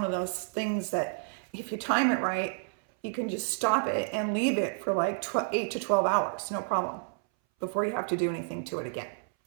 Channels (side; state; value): left; silent; 58 dB below the other